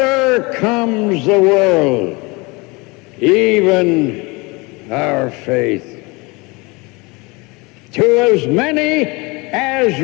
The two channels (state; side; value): quieter; right; 26.0 dB